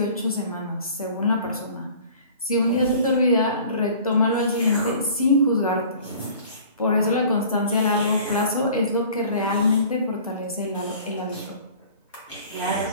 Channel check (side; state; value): both; inverted; correlation -0.47